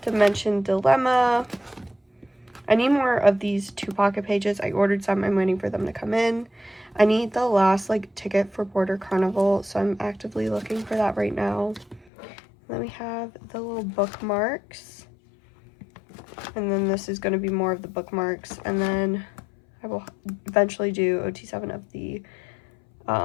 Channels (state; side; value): drops out; right; at 12.1 s